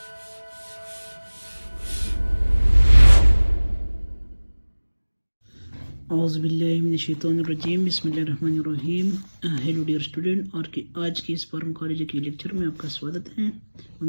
باللہ من الشیطان الرجیم، بسم اللہ الرحمن الرحیم۔ ہیلو ڈیئر اسٹوڈنٹ، اور آج کے اس فارماکالوجی کے لیکچر میں آپ کا سوادت ہے۔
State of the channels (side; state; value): both; inverted; correlation -1.00